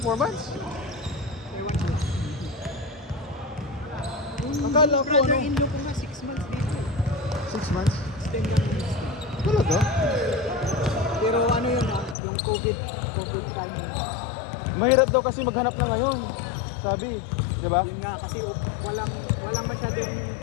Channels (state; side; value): drops out; right; at 12.2 s